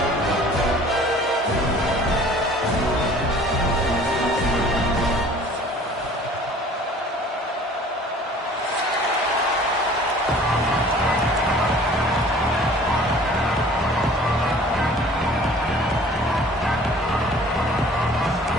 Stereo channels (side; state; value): both; normal; correlation 0.49